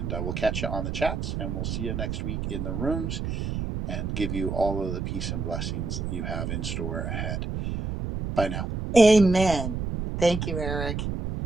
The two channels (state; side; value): noise; right; rumble, 3 dB below the sound